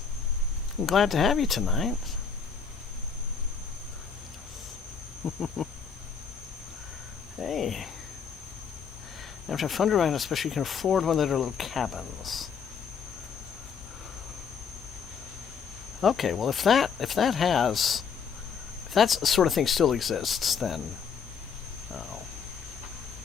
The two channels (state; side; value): quieter; right; 6.4 dB